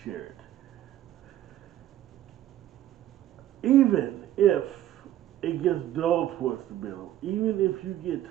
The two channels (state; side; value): quieter; left; 12.8 dB